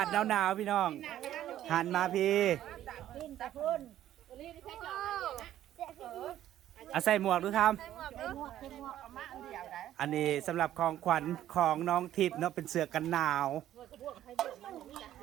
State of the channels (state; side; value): quieter; left; 12.3 dB